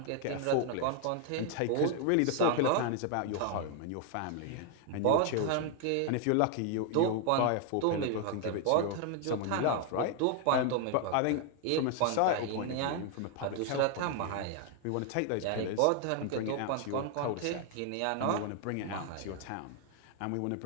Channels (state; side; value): different; both; correlation 0.00